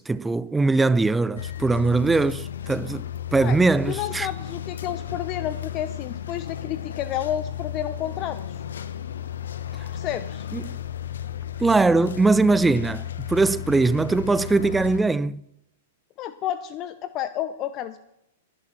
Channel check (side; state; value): both; normal; correlation 0.76